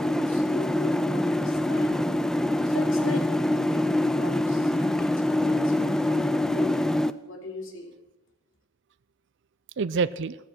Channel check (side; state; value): both; normal; correlation 0.87